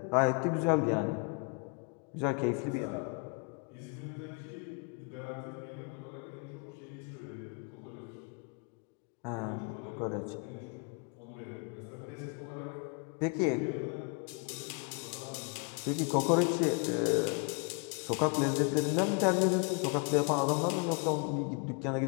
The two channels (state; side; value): quieter; right; 35.7 dB